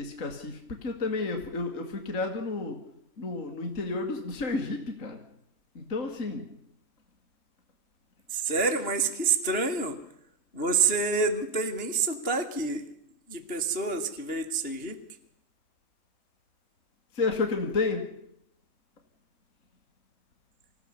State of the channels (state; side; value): late; right; 3.0 ms